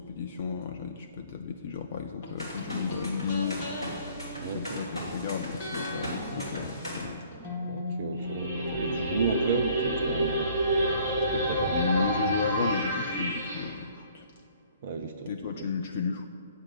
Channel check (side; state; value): both; inverted; correlation -0.57